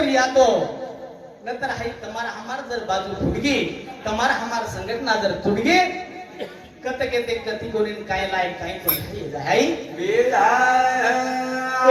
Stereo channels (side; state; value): both; identical; correlation 1.00